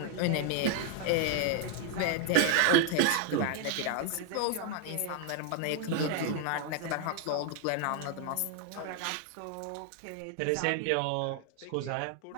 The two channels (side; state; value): both; different; correlation 0.00